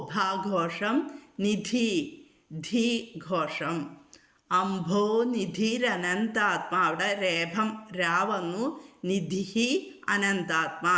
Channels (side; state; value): both; identical; correlation 1.00